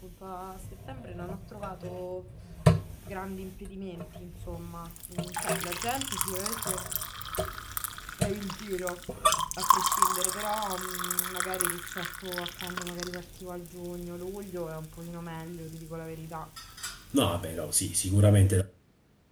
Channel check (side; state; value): both; identical; correlation 1.00